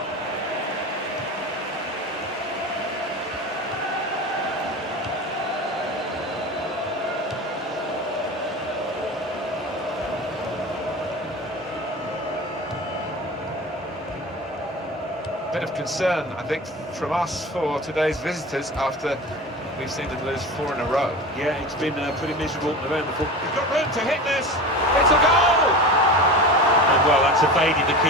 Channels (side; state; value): both; normal; correlation 0.31